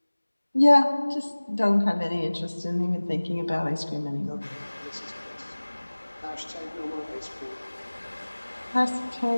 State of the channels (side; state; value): both; inverted; correlation -1.00